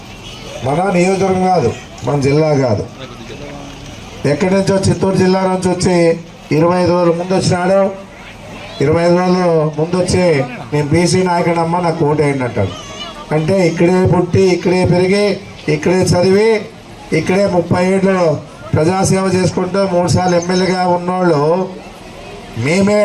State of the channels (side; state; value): both; identical; correlation 1.00